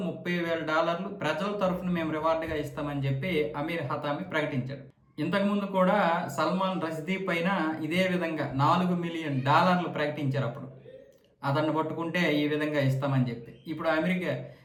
$30,000 ప్రజల తరఫున మేము రివార్డుగా ఇస్తామని చెప్పి అమీర్ హతామి ప్రకటించాడు. ఇంతకుముందు కూడా సల్మాన్ రష్దీ పైన ఇదే విధంగా $4 మిలియన్ ప్రకటించారు. అప్పుడు అతన్ని పట్టుకుంటే ఈ విధంగా ఇస్తామని చెప్పి. ఇప్పుడు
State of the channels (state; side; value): identical; both; correlation 1.00